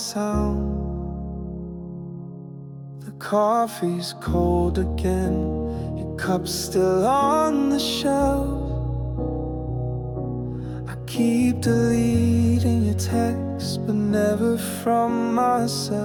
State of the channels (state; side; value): identical; both; correlation 1.00